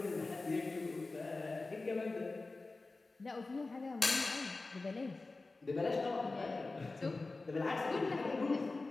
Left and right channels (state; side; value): quieter; right; 3.5 dB